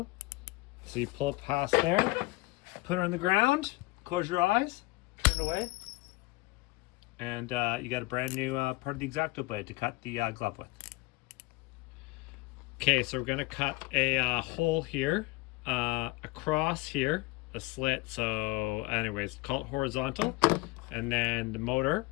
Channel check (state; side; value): quieter; right; 22.3 dB